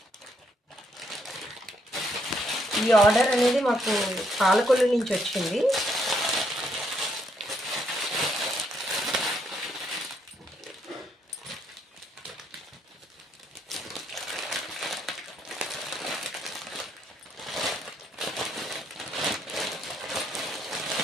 ఈ ఆర్డర్ అనేది మాకు పాలకొల్లు నుంచి వచ్చింది.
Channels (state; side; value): normal; both; correlation 0.73